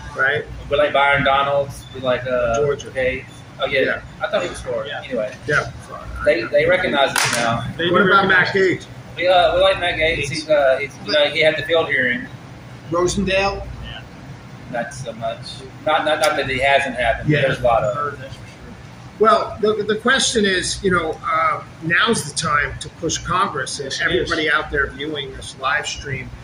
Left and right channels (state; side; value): identical; both; correlation 1.00